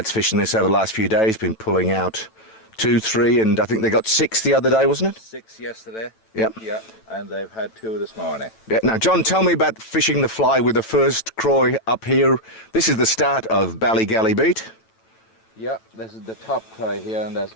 fishing this over the last few days, been pulling out 2, 3 and I think they got 6 the other day, wasn't it? 6 yesterday. Yep. Yeah, and they've had 2 this morning. Yeah. Now, John, tell me about fishing the fly with the first croy up here. This is the start of Ballygally Beach. Yeah, this is the top cry here, and there's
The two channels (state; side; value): late; right; 9.0 ms